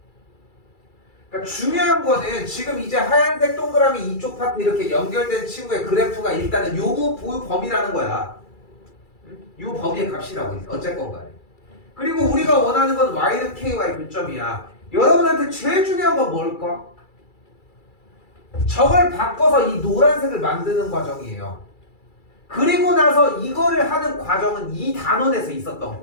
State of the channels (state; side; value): late; right; 2.3 ms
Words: 그러니까 중요한 거는 지금 이제 하얀색 동그라미 이쪽 파트 이렇게 연결된 친구의 그래프가 일단은 요 범위라는 거야. 요 범위의 값이라고 어쨌건 간에. 그리고 우리가 원하는 건 y는 ky의 교점이야. 여러분한테 제일 중요한 건 뭘까? 저걸 바꿔서 이 노란색을 만드는 과정이에요. 그리고 나서 이거를 하는 과정은 이 단원에서 있었던